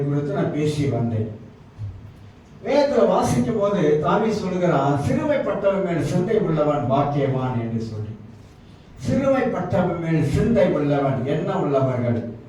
நான் பேசி வந்தேன். வேதத்தில் வாசிக்கும் போது தாவீது சொல்லுகிறான், சிறுமைப்பட்டவன் மேல் சிந்தை உள்ளவன் பாக்கியவான் என்று சொல்லி. சிறுமைப்பட்டவன் மேல் சிந்தை உள்ளவன், எண்ணம் உள்ளவர்கள்,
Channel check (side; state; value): both; identical; correlation 1.00